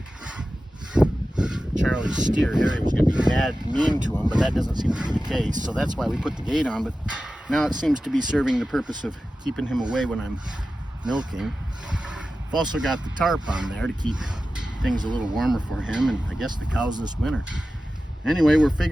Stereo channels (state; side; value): normal; both; correlation 0.94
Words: Charlie's steer, Harry, was going to be mean to him, but that doesn't seem to be the case, so that's why we put the gate on. But now it seems to be serving the purpose of keeping him away when I'm milking. I've also got the tarp on there to keep things a little warmer for him and I guess the cows this winter. Anyway, we're